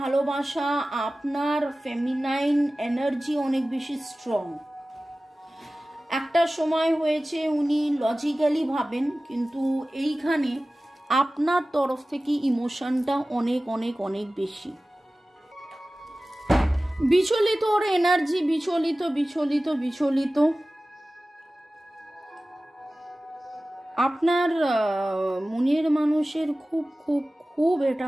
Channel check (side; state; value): both; normal; correlation 0.97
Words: আপনার ফেমিনাইন এনার্জি অনেক বেশি স্ট্রং। একটা সময় হয়েছে উনি লজিক্যালি ভাবেন, কিন্তু এইখানে আপনার তরফ থেকে ইমোশনটা অনেক অনেক অনেক বেশি বিচলিত। ওর এনার্জি বিচলিত বিচলিত বিচলিত। আপনার মনের মানুষের খুব খুব খুব এটা